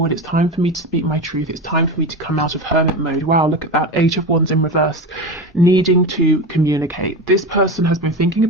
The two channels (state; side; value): normal; both; correlation 0.23